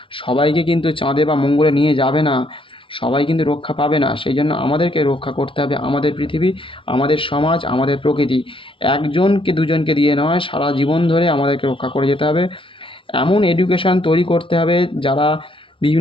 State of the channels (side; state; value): right; late; 0.25 ms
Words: সবাইকে কিন্তু চাঁদে বা মঙ্গলে নিয়ে যাবে না, সবাই কিন্তু রক্ষা পাবে না। সেই জন্য আমাদেরকে রক্ষা করতে হবে আমাদের পৃথিবী, আমাদের সমাজ, আমাদের প্রকৃতি। একজনকে দুজনকে দিয়ে নয়, সারা জীবন ধরে আমাদেরকে রক্ষা করে যেতে হবে। এমন এডুকেশান তৈরি করতে হবে যারা